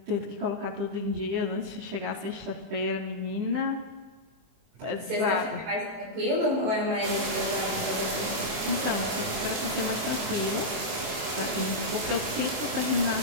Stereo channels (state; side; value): late; left; 23 ms